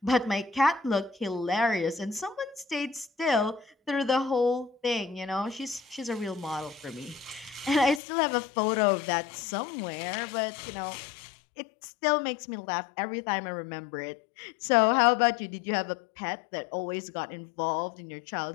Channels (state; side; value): drops out; right; at 8.0 s